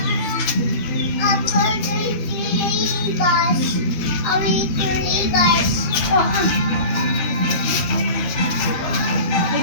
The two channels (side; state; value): right; late; 13 ms